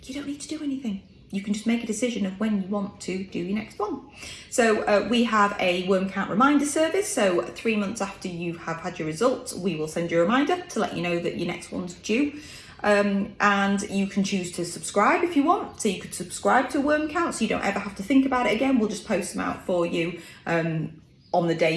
you don't need to do anything. You can just make a decision of when you want to do your next one. So we have a worm count reminder service. So 3 months after you have had your results, we will send you a reminder to let you know that your next one's due. And you can choose to subscribe if you want. So you could subscribe to a worm count so you don't ever have to think about it again. We'll just post them out for you on the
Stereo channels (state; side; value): identical; both; correlation 1.00